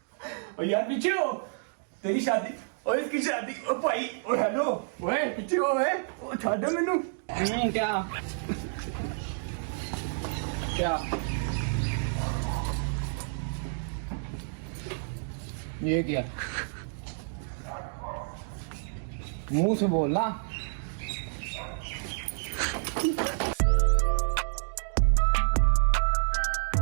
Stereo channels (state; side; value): silent; left; digital silence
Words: ओ यार पीछे हो, तेरी शादी और इसकी शादी। ओ भाई ओ हेलो, ओए पीछे हो, ओए ओ छाड़ मेनू। क्या क्या ये क्या मुंह से बोलना।